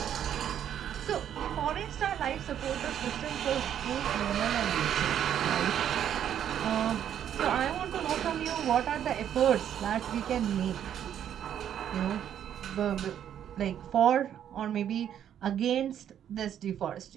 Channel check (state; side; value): quieter; left; 9.8 dB